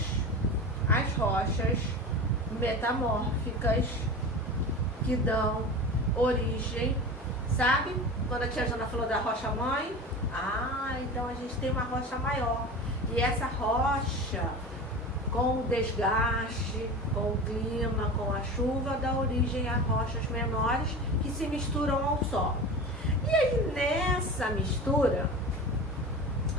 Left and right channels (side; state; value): both; normal; correlation 0.31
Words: as rochas metamórficas que dão origem, sabe? Quando a tia Jana falou da rocha mãe, então a gente tem uma rocha maior. E essa rocha, com o desgaste, com o clima, com a chuva, dá origem a rochas menores que se misturam ao solo. E aí nessa mistura,